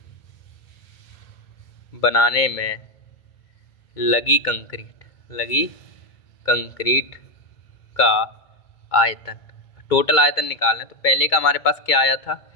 में लगी कंक्रीट का आयतन, टोटल आयतन निकालना। तो पहले का हमारे पास क्या आया था,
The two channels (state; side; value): late; right; 2.2 ms